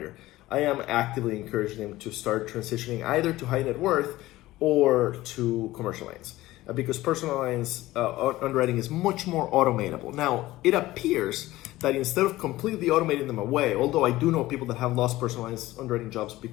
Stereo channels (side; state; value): right; quieter; 17.2 dB